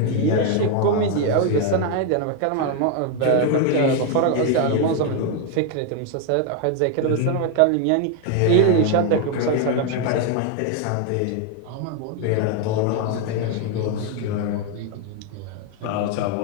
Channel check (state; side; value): different; both; correlation 0.01